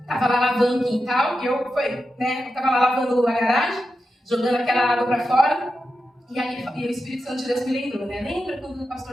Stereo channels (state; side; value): normal; both; correlation 0.89